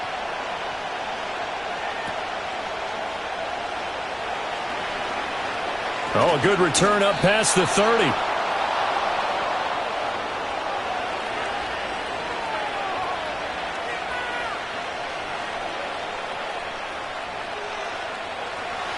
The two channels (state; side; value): identical; both; correlation 1.00